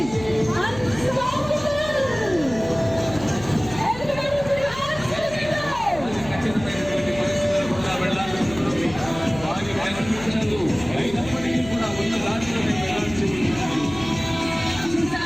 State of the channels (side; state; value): left; noise; hum, 15 dB below the sound